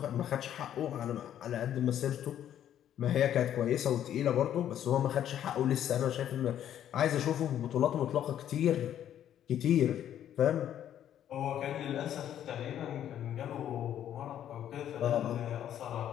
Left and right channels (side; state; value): right; quieter; 10.6 dB